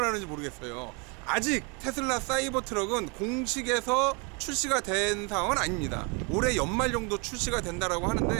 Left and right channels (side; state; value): left; quieter; 31.0 dB